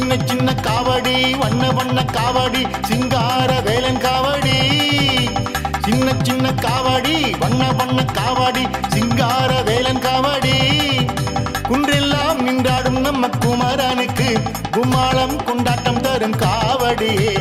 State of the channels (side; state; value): both; identical; correlation 1.00